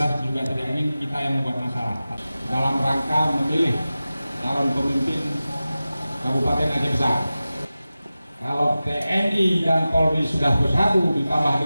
juga tidak ingin kita yang membuat masalah dalam rangka memilih calon pemimpin Kabupaten Aceh Besar. Kalau TNI dan Polri sudah bersatu ditambah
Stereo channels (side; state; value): both; inverted; correlation -0.96